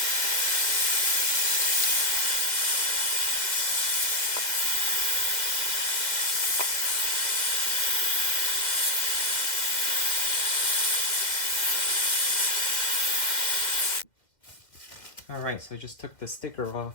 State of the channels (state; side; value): late; right; 2.1 ms